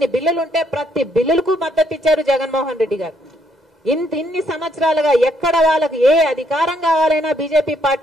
బిల్లులుంటే ప్రతి బిల్లులకు మద్దతు ఇచ్చారు జగన్మోహన్ రెడ్డి గారు. ఇన్ని సంవత్సరాలుగా ఎక్కడ వాళ్ళకి ఏ అధికారం కావాలైనా బీజేపీ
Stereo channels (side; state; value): both; normal; correlation 0.71